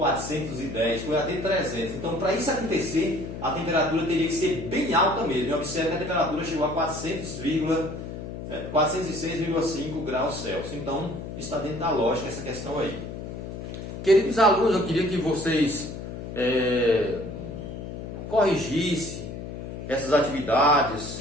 foi até 300. Então, para isso acontecer, a temperatura teria que ser bem alta mesmo. E observe que a temperatura chegou a 406,5 graus Celsius. Então, está dentro da lógica essa questão aí. Queridos alunos, eu queria que vocês corrigissem essas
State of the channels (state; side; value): noise; left; hum, 8 dB below the sound